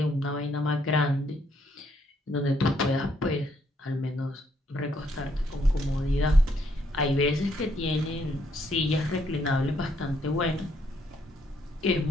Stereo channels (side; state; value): both; normal; correlation 0.72